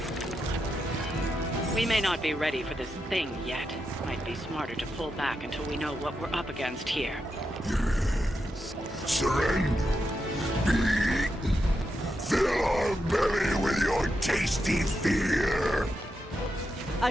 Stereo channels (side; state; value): both; normal; correlation 0.86